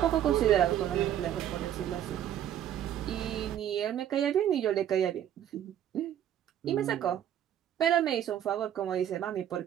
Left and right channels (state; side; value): quieter; left; 10.6 dB